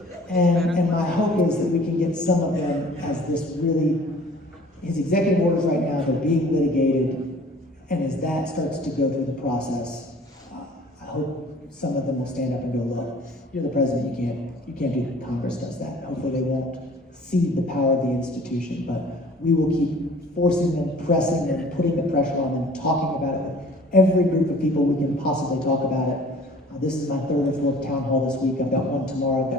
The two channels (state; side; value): normal; both; correlation 0.50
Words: And my hope is that we can get some of them as this really, his executive orders right now, they're being litigated, and as that starts to go through the process, I hope some of them will stand up and go, look, you're the president, you can't do that. Congress does that. Hopefully they won't cede the power of the institution, but we will keep forcing them, pressing them, putting the pressure on them, talking about it with every group of people we can possibly talk about it. This is my third or fourth town hall this week. I've got one tomorrow. I've